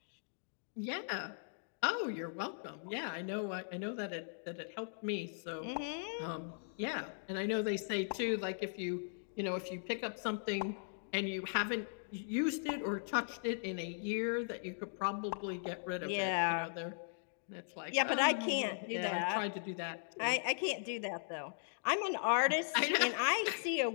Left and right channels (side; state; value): right; silent; digital silence